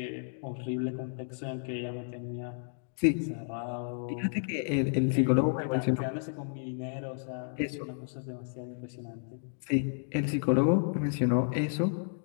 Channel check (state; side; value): silent; right; digital silence